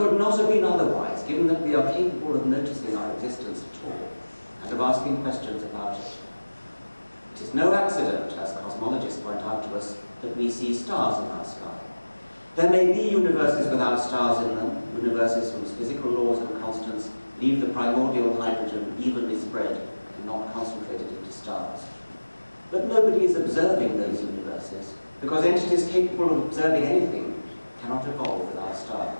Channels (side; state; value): both; inverted; correlation -1.00